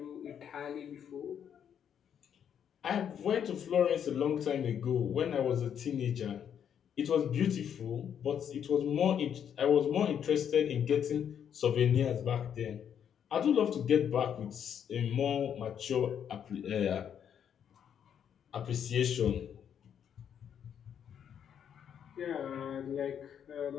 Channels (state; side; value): quieter; right; 8.6 dB